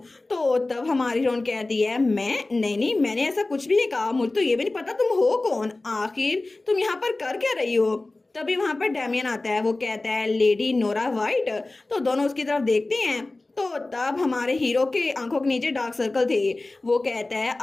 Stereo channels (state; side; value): quieter; right; 3.0 dB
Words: तो तब हमारी हीरोइन कहती है मैं नहीं नहीं, मैंने ऐसा कुछ भी नहीं कहा। मुझे तो ये भी नहीं पता तुम हो कौन, आखिर तुम यहाँ पर कर क्या रही हो? तभी वहां पर डैमियन आता है। वो कहता है लेडी नोरा वाइट। तो दोनों उसकी तरफ देखते हैं। तो तब हमारे हीरो के आंखों के नीचे डार्क सर्कल थे। वो कहता है